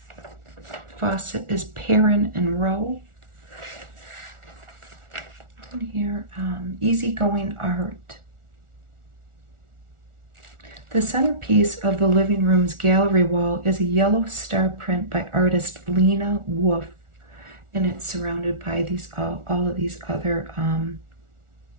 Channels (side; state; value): left; late; 1.4 ms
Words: Faucet is Perrin and Rowe. And here, easygoing art. The centerpiece of the living room's gallery wall is a yellow star print by artist Lena Wolf, and it's surrounded by these all of these other